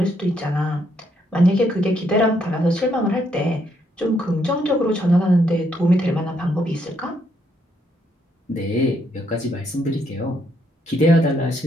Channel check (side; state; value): both; normal; correlation 0.74